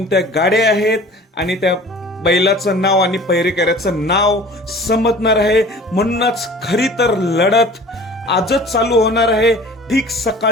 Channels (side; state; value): both; normal; correlation 0.45